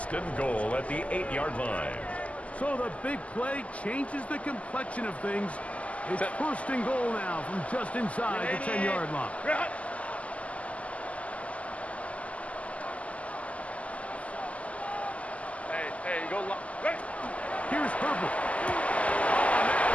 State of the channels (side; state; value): right; late; 0.067 ms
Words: and goal at the 8-yard line. So the big play changes the complexion of things. It's Set. first and goal now from just inside the 10-yard line. Drop. Hey, go long. Ready. Here's Herbert.